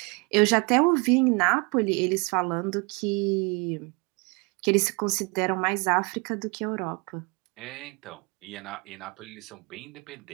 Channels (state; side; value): quieter; left; 30.6 dB